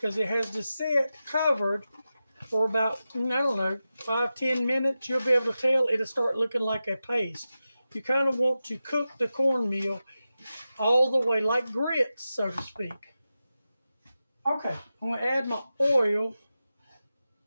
it has to sit covered for about, I don't know, 5-10 minutes. You'll be able to tell it'll start looking like a paste. You kind of want to cook the cornmeal all the way like grits, so to speak. Okay, I'm going to add my oil.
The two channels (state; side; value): inverted; both; correlation -0.92